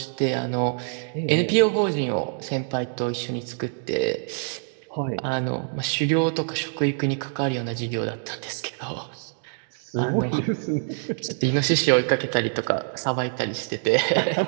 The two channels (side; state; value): left; silent; 62 dB below the other